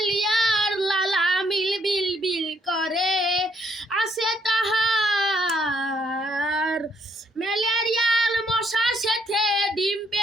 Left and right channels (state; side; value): normal; both; correlation 0.70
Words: লালা মিল বিল বিল করে, আসে তাহার ম্যালেরিয়ার মশার সাথে ডিম